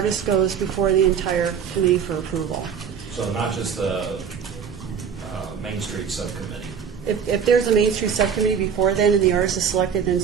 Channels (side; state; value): left; quieter; 7.3 dB